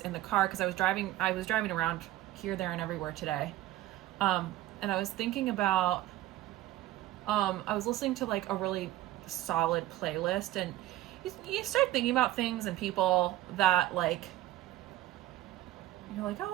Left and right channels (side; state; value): left; quieter; 15.3 dB